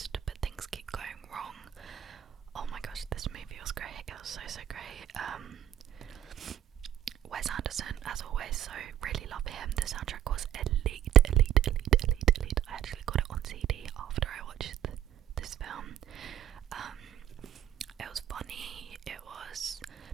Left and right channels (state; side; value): quieter; left; 11.2 dB